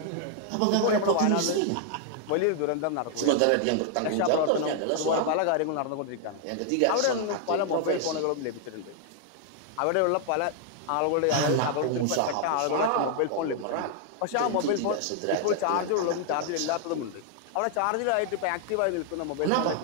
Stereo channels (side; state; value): both; different; correlation 0.00